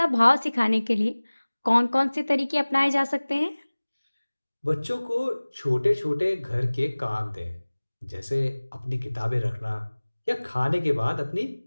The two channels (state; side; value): inverted; both; correlation -1.00